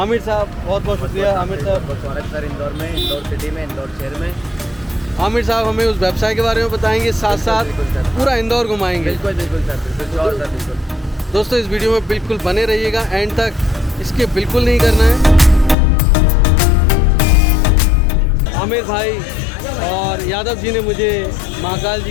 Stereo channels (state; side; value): drops out; right; at 15.8 s